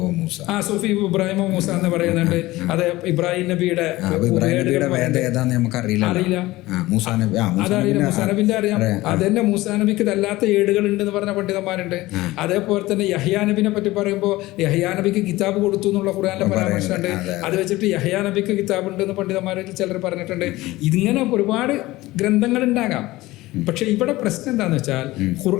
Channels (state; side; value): quieter; right; 18.6 dB